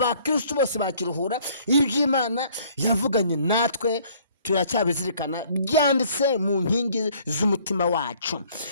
bose bakiruhura. Iby'Imana yavuganye natwe turacyabizirikana, byanditse mu nkingi z'umutima wacu.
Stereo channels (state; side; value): inverted; both; correlation -0.58